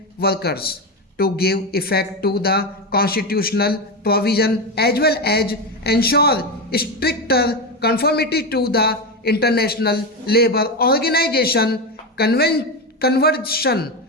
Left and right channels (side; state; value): both; normal; correlation 0.14